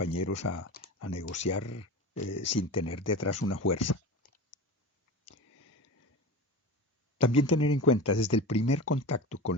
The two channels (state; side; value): normal; both; correlation 0.28